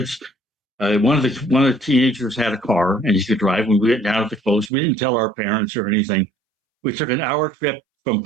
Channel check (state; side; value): drops out; left; at 4.7 s